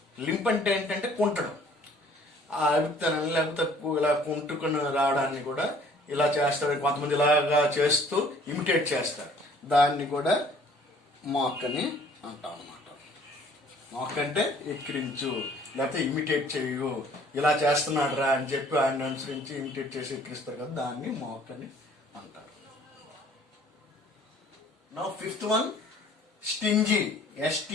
Lymph అంటే ఏంటంటే కుంటడం, ఆ అభిప్రాయం లేకపోతే ఇలా కుంటుకుని రావడాన్ని కూడా ఇలా చేస్తారు, కొంతమంది ఇలాగా చేస్తూ ఇమిటేట్ చేస్తారు, దాన్ని కూడా మాక్ అని అంటాం అన్నమాట. మాక్ అంటే ఎక్కిరించు, లేకపోతే ఇమిటేట్ చేయు, ఇలా చేస్తున్నాడు రా అని చెప్పి ఆయన అనుసరించి ఇమిటేట్ చేసి ఎక్కిరిస్తారు కదా, దాన్ని మాక్ అని అంటారు. Now fifth one, stingy.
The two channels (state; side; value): normal; both; correlation 0.55